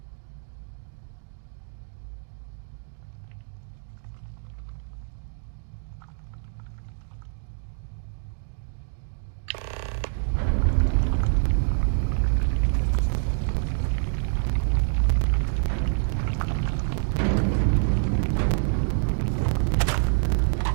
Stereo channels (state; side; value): silent; left; digital silence